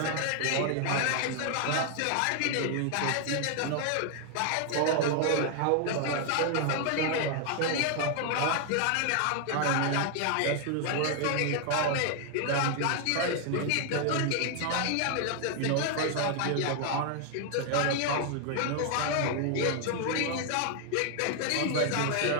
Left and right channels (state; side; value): different; both; correlation 0.00